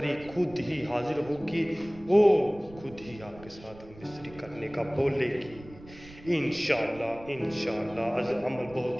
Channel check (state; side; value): noise; right; rumble, 19 dB below the sound